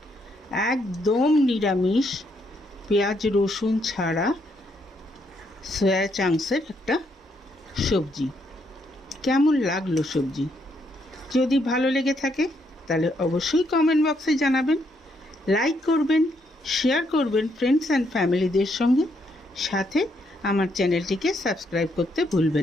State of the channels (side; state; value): both; normal; correlation 0.74